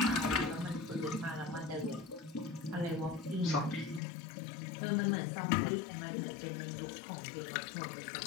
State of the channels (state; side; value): drops out; right; at 4.0 s